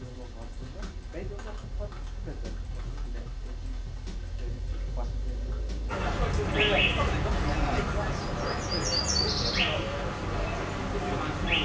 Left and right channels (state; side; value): identical; both; correlation 1.00